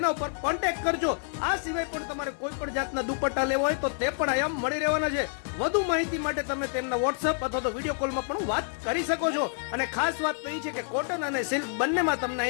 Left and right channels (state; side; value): silent; right; digital silence